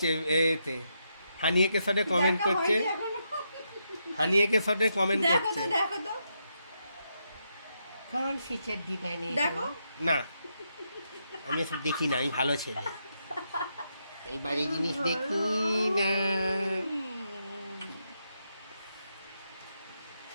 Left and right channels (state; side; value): inverted; both; correlation -0.81